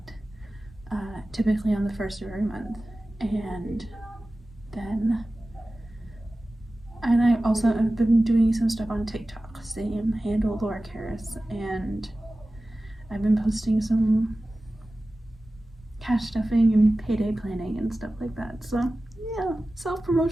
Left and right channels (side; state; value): both; normal; correlation 0.96